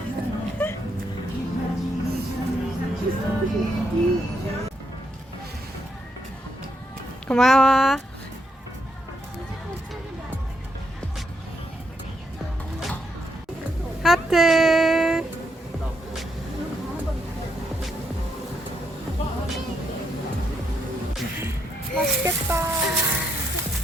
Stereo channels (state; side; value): normal; both; correlation 0.78